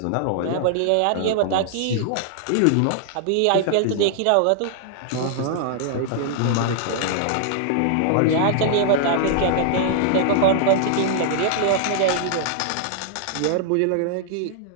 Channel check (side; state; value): both; different; correlation -0.01